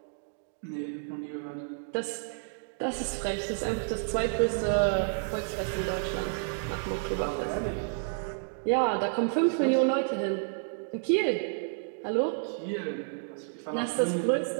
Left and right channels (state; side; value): silent; left; digital silence